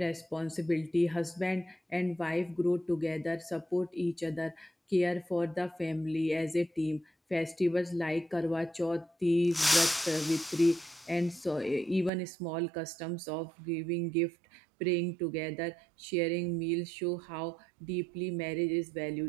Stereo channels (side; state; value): left; drops out; at 12.1 s